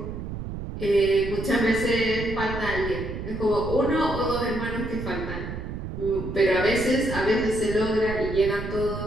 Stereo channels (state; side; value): noise; right; rumble, 7 dB below the sound